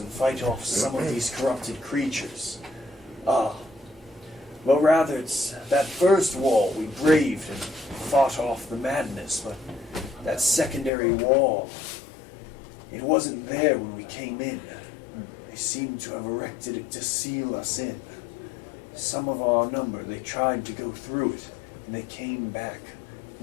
fight off some of these corrupted creatures. Well, rather, it's that first wall we braved and fought off the madness, but that secondary wall, it wasn't there when we came in. They seemed to have erected it to seal us in. Some of our number, they tried to go through it, and they came back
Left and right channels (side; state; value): right; drops out; at 10.9 s